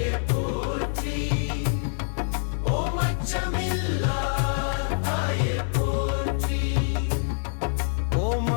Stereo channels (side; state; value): right; silent; digital silence